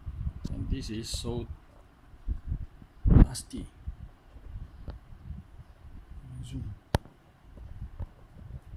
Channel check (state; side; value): identical; both; correlation 1.00